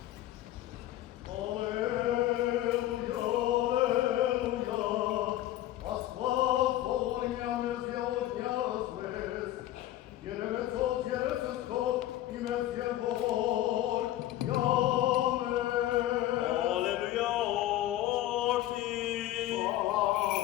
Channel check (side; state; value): right; quieter; 14.1 dB